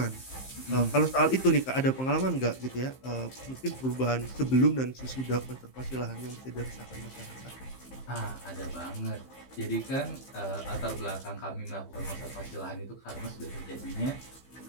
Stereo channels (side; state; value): right; late; 15 ms